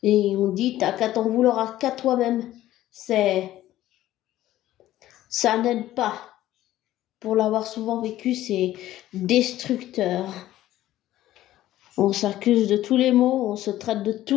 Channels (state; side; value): quieter; right; 14.2 dB